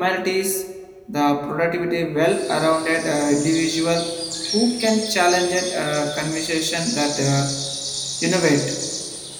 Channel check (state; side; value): identical; both; correlation 1.00